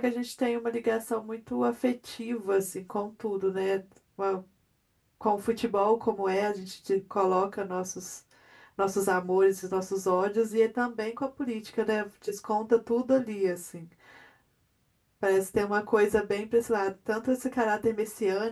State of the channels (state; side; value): identical; both; correlation 1.00